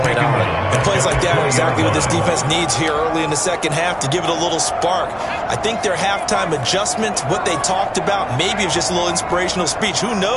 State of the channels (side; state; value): both; identical; correlation 1.00